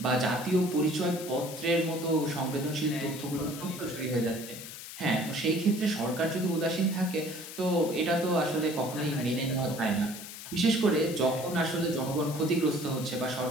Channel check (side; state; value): left; noise; hiss, 11 dB below the sound